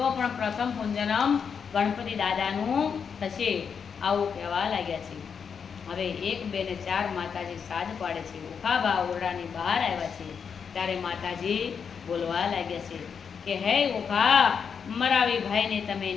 પણ પ્રથમ પૂંજનમ ગણપતિ દાદાનું થશે. આવું કહેવા લાગ્યા છે. હવે 1, 2 ને 4 માતાજી સાજ પાડે છે. ઉખાબા ઓરડાની બહાર આવ્યા છે ત્યારે માતાજી બોલવા લાગ્યા છે કે હે ઓખા મરાવી ભાઈને તમે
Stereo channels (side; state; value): right; quieter; 6.6 dB